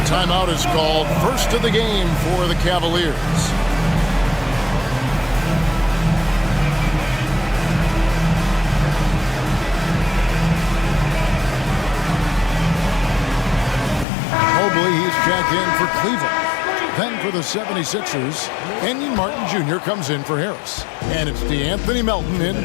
Timeout is called. First of the game for the Cavaliers. Mobley, he's checked in for Cleveland. Then for the 76ers, Kenyon Martin Jr. comes in for Harris. And it's DeAnthony Melton in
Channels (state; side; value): drops out; right; at 14.1 s